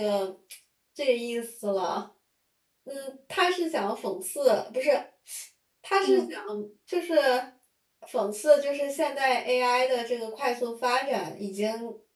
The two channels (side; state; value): both; identical; correlation 1.00